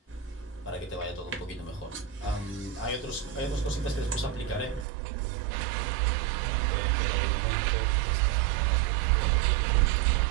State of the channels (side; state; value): left; drops out; at 4.9 s